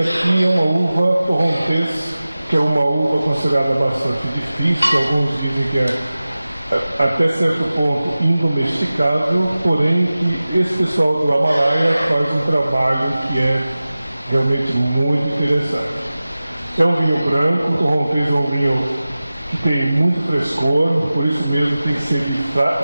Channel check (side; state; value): both; inverted; correlation -0.96